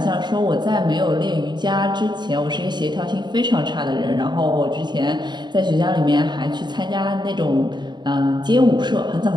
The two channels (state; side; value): late; left; 0.21 ms